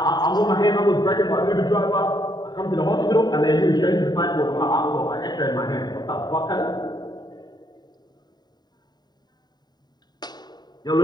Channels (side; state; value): right; late; 0.20 ms